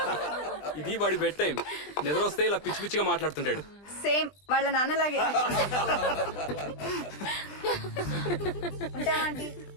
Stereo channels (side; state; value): right; late; 20 ms